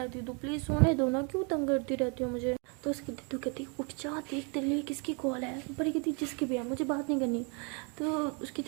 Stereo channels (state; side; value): quieter; left; 35.8 dB